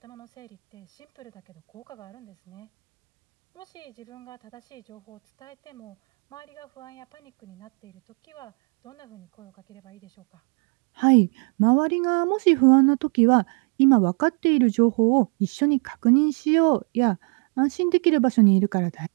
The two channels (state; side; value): quieter; left; 38.0 dB